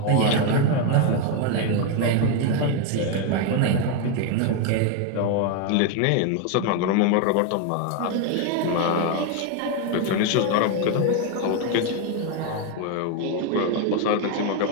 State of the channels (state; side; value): different; both; correlation 0.01